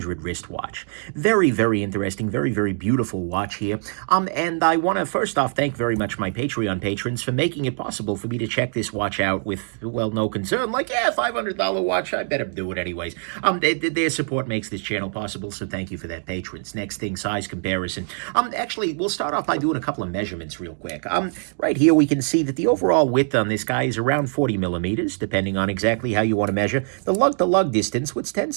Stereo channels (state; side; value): silent; left; 63 dB below the other